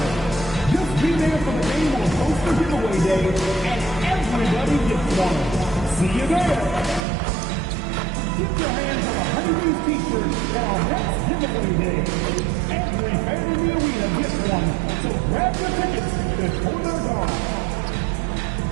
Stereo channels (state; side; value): drops out; left; at 7.0 s